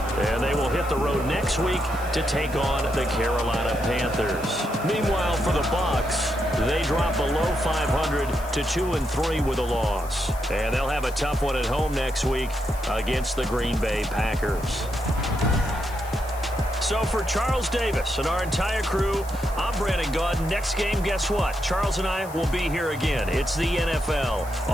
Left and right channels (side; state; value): left; noise; hiss, 18 dB below the sound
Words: And they will hit the road next week to take on the Carolina Panthers. Meanwhile, for the Bucs, they drop below 500 to 2-3 with a loss. And they'll have a tough one at home next week against the Green Bay Packers. So for Charles Davis and our entire crew, I'm Brandon Gaudin. Next game, guess what? Charles and I will be here again. It's the NFL